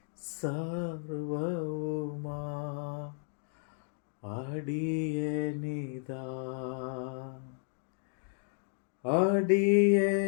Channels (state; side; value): silent; right; digital silence